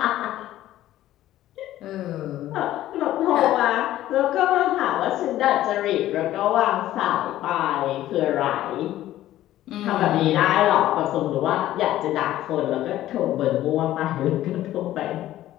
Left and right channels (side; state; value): right; quieter; 13.9 dB